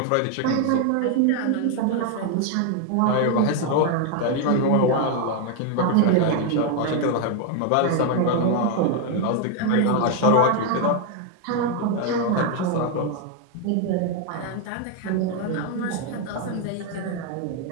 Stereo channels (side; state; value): both; different; correlation 0.01